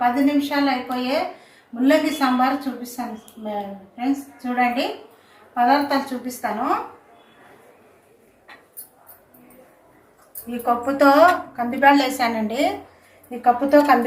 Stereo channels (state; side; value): identical; both; correlation 1.00